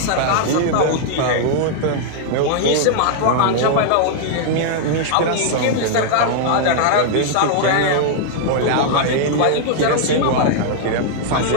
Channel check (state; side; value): different; both; correlation -0.01